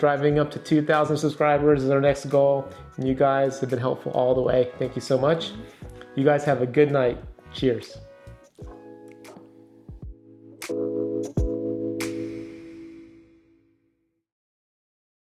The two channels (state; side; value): identical; both; correlation 1.00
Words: up to 2,000 subscribers is our next goal. And you guys have been helpful all the way. Thank you so much. You guys have a good night. Cheers.